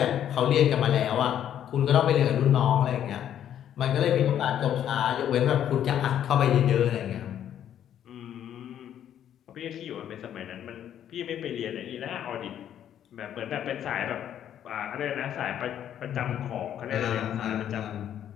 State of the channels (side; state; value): right; quieter; 10.3 dB